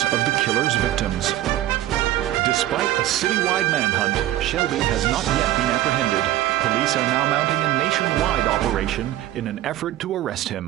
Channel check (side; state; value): left; quieter; 14.1 dB